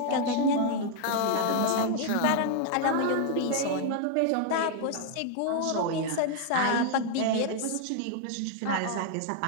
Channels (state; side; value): different; both; correlation 0.00